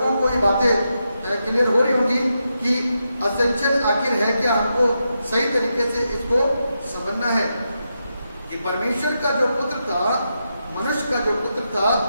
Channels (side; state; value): both; inverted; correlation -0.85